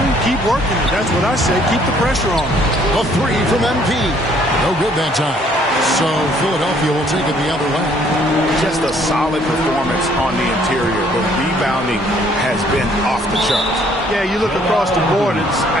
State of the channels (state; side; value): normal; both; correlation 0.62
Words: keep working it. That's what I say. Keep the pressure on. A three from MP. No good that time. So Philadelphia will take it the other way. Just a solid performance on the interior. The rebounding has been off the charts. Yeah, you look across the board, it's